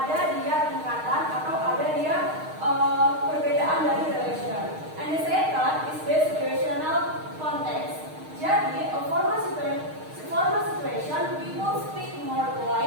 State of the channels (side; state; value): left; late; 6.5 ms